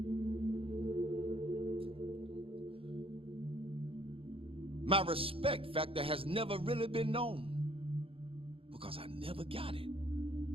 My respect factor has never really been known because I never got it.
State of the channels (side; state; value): left; late; 0.27 ms